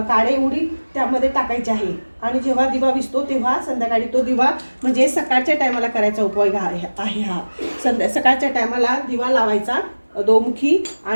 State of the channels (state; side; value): inverted; both; correlation -1.00